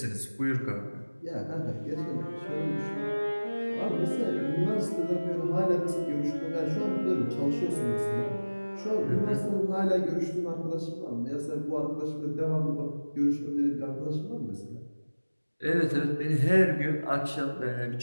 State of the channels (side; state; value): both; inverted; correlation -1.00